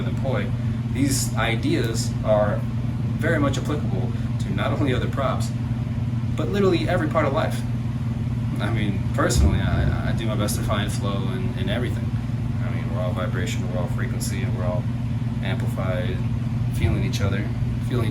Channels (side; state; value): both; identical; correlation 1.00